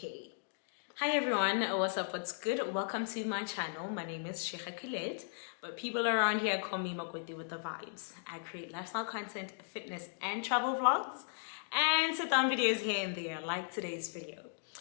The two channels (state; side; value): silent; right; digital silence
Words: Hi everyone, what's up, what's good? Welcome to my channel. My name is Sheikha Collette, but people around here call me Makoti with the vibes. I create lifestyle content, fitness and travel vlogs, and sit down videos here and there like today's video.